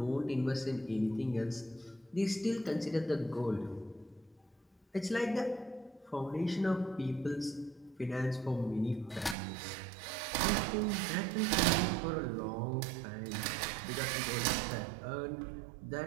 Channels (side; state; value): left; drops out; at 9.3 s